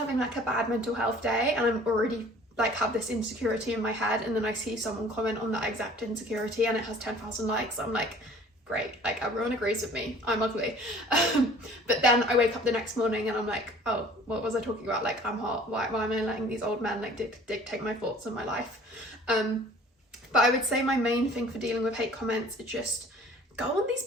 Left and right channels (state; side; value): normal; both; correlation 0.51